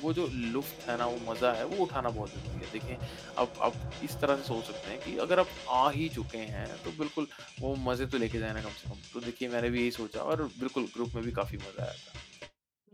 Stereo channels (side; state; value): both; identical; correlation 1.00